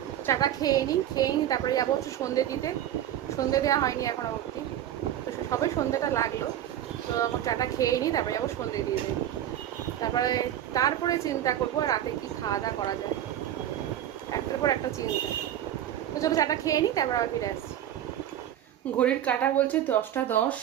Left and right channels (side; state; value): left; quieter; 11.4 dB